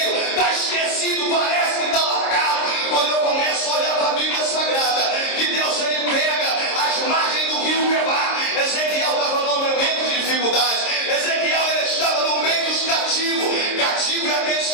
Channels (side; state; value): right; late; 26 ms